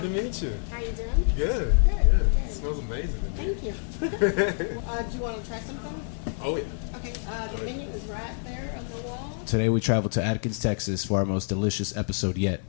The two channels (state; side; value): silent; right; 60 dB below the other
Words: to meet you. How you doing? Good. Yeah. It smells amazing. Thank you. Do you want to try something? Oh, yeah. Okay. The menu is right there on the wall. Today we travel to Adkins, Texas for our most delicious episode yet.